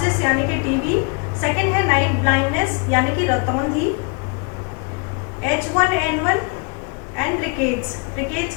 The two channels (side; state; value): right; quieter; 34.0 dB